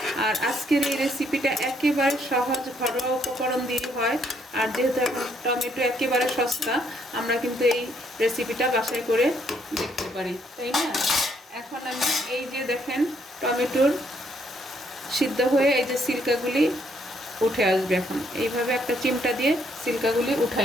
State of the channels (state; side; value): normal; both; correlation 0.70